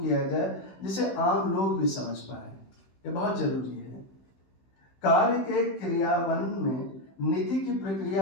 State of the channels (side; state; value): right; late; 15 ms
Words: किया जाए जिसे आम लोग भी समझ पाए। ये बहुत जरूरी है। कार्य के क्रियान्वयन में नीति की